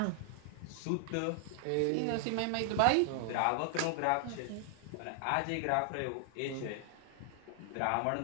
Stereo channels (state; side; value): different; both; correlation 0.00